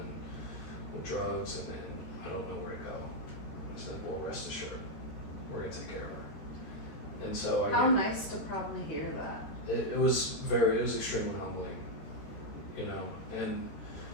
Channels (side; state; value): right; late; 13 ms